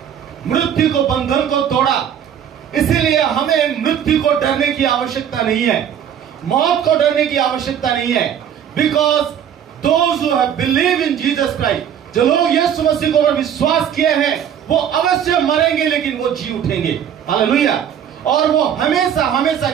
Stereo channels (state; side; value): quieter; left; 9.1 dB